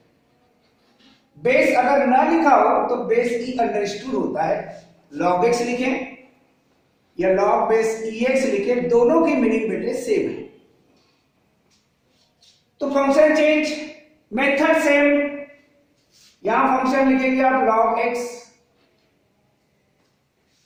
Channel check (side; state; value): both; identical; correlation 1.00